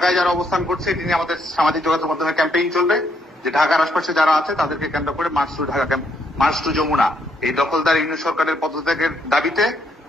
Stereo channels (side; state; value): both; normal; correlation 0.73